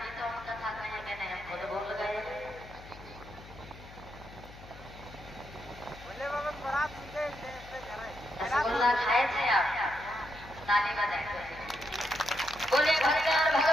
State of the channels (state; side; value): noise; left; hum, 17 dB below the sound